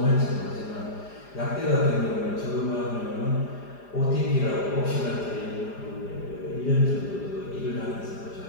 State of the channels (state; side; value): late; right; 4.9 ms